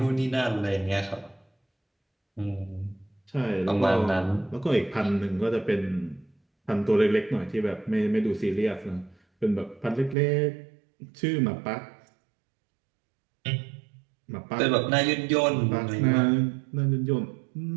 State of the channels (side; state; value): left; drops out; at 10.2 s